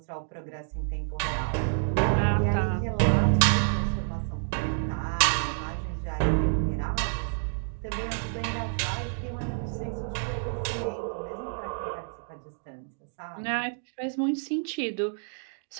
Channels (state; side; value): silent; left; 59 dB below the other